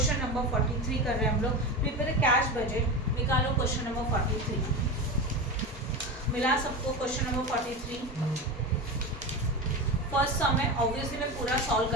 नंबर 43 कर रहे हैं हम लोग। प्रिपेयर कैश बजट, निकालो क्वेश्चन नंबर 43। मिला सबको क्वेश्चन नंबर 43? फर्स्ट सम है, ऑब्वियसली मैं पूरा सॉल्व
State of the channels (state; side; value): normal; both; correlation 0.23